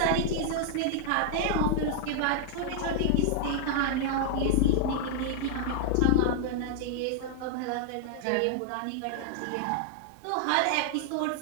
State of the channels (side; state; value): both; different; correlation 0.00